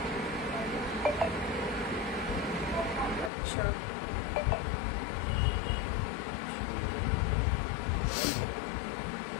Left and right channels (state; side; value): drops out; right; at 3.3 s